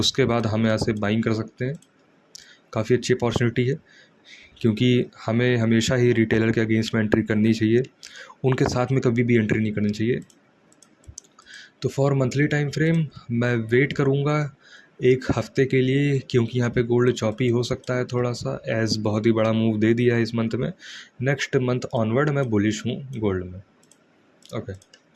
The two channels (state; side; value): identical; both; correlation 1.00